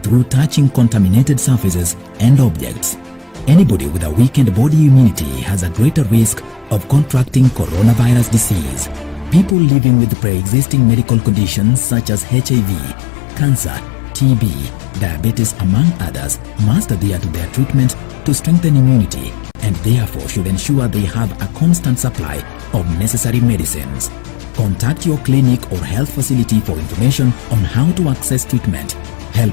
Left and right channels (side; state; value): right; drops out; at 9.6 s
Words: through touching contaminated surfaces and objects. Anybody with a weakened body immunity has a greater risk of contracting coronavirus disease. People living with pre-existing medical conditions such as HIV, cancer, TB, diabetes among others must adhere to their treatment to strengthen immunity, and therefore should ensure they have a constant supply of necessary medicines. Contact your clinic or health facility for information on how to access treatment.